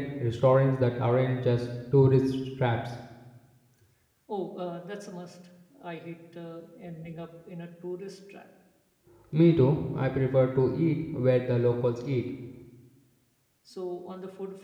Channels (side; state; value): both; identical; correlation 1.00